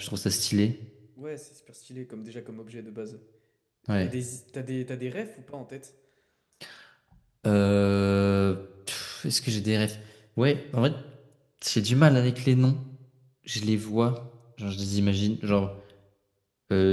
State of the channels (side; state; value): both; identical; correlation 1.00